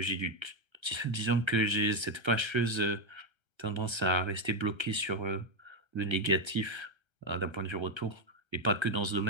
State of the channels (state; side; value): late; left; 1.3 ms